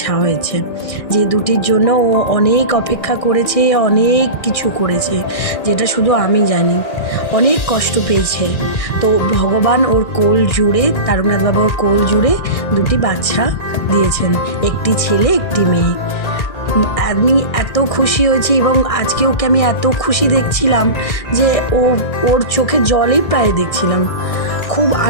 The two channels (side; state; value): right; late; 1.6 ms